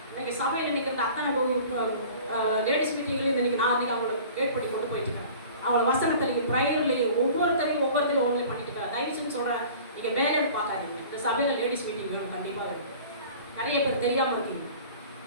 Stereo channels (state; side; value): inverted; both; correlation -0.44